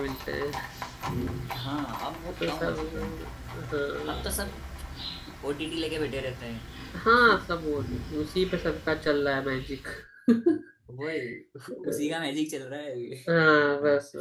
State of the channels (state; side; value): identical; both; correlation 1.00